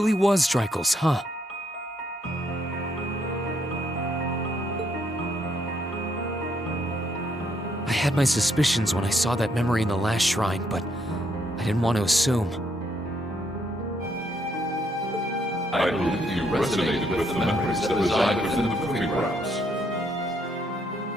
was Drykel's, huh? I had my suspicions when I saw that memory in the last shrine, but I didn't want to assume. I believe you resonated with the memories that reside within the proving grounds.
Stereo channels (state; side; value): normal; both; correlation 0.72